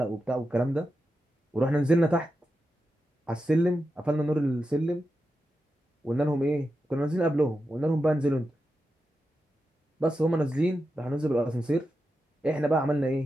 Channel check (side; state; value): both; normal; correlation 0.89